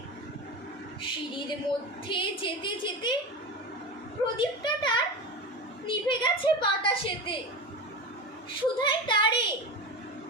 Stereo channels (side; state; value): both; normal; correlation 0.24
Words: সিঁড়ির মধ্যে যেতে যেতে প্রদীপটা তার নিভে গেছে বাতাসেতে। সুধাই তারে,